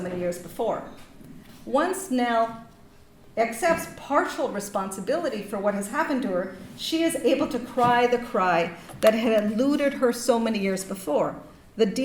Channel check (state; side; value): identical; both; correlation 1.00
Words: years before. Once Nell accepts partial responsibility for what has happened to her, she is able to cry the cry that had eluded her so many years before, the